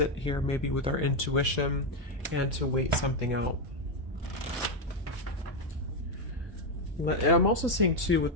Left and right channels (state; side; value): normal; both; correlation 0.05